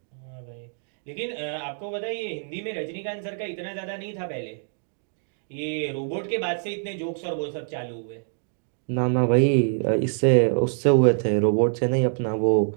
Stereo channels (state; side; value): silent; left; 61 dB below the other